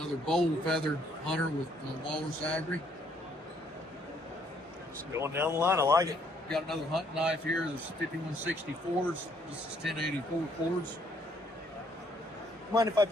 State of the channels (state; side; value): normal; both; correlation 0.67